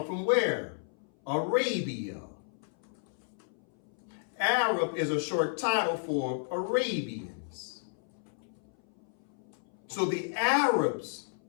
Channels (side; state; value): right; silent; 56 dB below the other